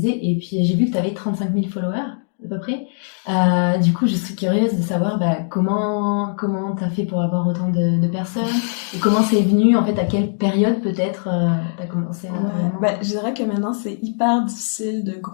et puis j'ai vu que t'avais 35 000 followers, à peu près. Du coup, je suis curieuse de savoir comment t'as fait pour avoir autant de personnes, et comment c'est venu, en fait, à quelle période peut-être t'as commencé à... Je dirais que maintenant, c'est hyper difficile de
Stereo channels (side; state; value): right; silent; digital silence